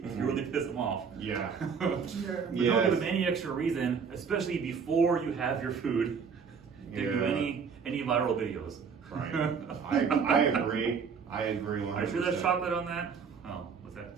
if you really piss them off. Yeah. Sure. But don't Yes. give them any extra reason, especially before you have your food, to do Yeah. any viral videos. Right. I agree. I agree 100%. Are you sure that's chocolate on that? Oh, was that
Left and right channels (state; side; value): quieter; left; 6.1 dB